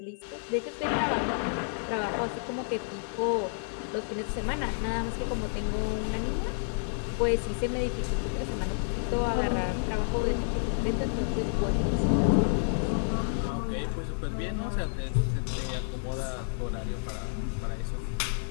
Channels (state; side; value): silent; right; 58 dB below the other